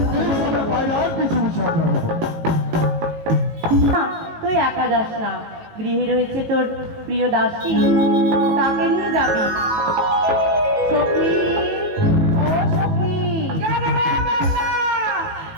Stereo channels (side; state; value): left; late; 19 ms